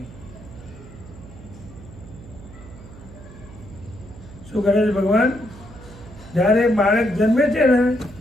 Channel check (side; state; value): right; noise; hum, 17 dB below the sound